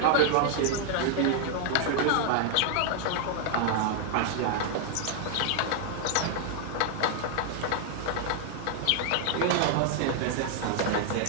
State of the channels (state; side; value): different; both; correlation 0.00